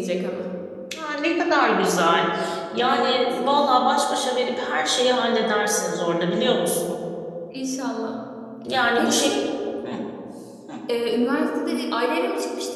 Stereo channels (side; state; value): both; identical; correlation 1.00